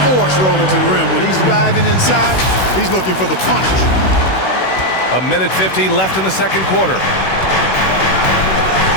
force rolling to the rim. When he's diving inside, he's looking for the punch. A minute 50 left in the second quarter.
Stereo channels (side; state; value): right; late; 16 ms